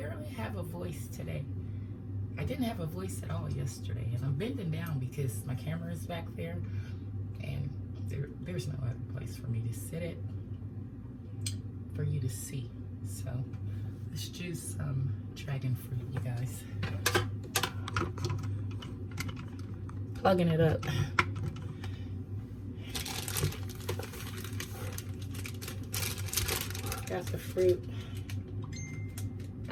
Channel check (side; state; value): both; identical; correlation 1.00